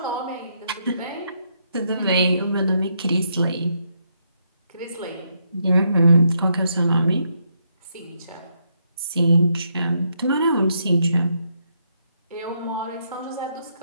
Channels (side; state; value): both; inverted; correlation -0.77